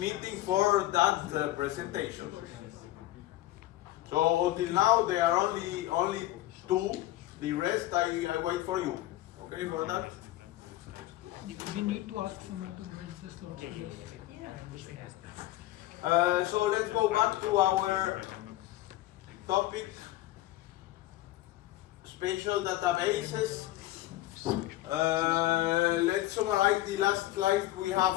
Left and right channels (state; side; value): quieter; right; 15.8 dB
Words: for that presentation. So until now there are only 2, the rest I wait for you. Okay for that? We need to ask someone to get the slot. So let's go back to our topic, spatial databases. Let's summarize the last slide we